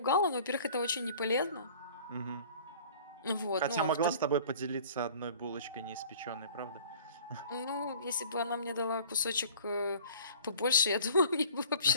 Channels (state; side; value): inverted; both; correlation -0.48